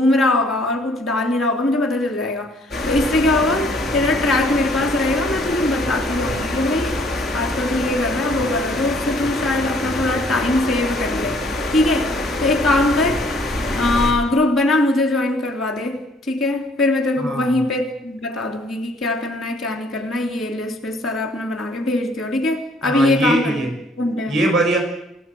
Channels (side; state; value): both; normal; correlation 0.61